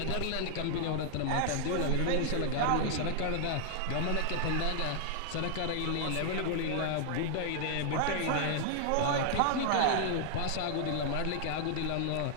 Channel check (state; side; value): different; both; correlation 0.00